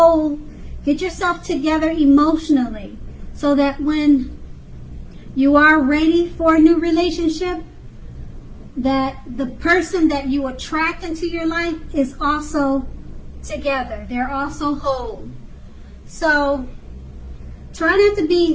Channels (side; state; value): both; identical; correlation 1.00